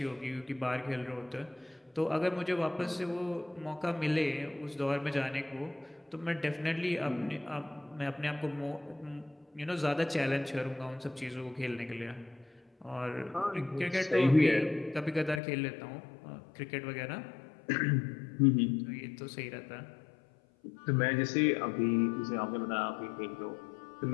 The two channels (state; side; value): drops out; right; at 15.4 s